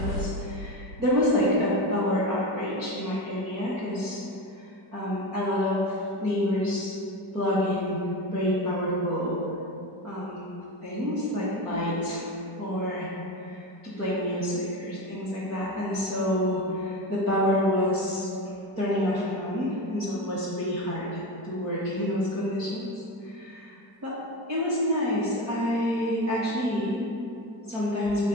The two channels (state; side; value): late; left; 4.5 ms